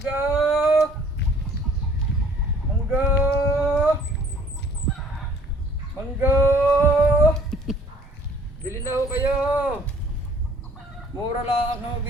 Mangga! Mangga! Bili na ho kayo! Mura lang ako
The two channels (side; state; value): both; normal; correlation 0.55